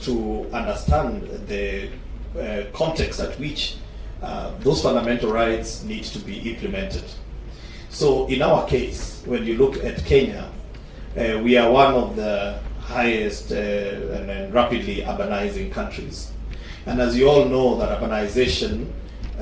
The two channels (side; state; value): both; identical; correlation 1.00